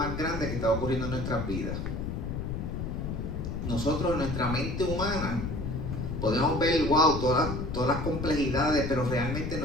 grande que estaba ocurriendo en nuestras vidas. Nosotros, en nuestra mente humana, podemos ver, wow, todas las complejidades, pero realmente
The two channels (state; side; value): noise; left; rumble, 4 dB below the sound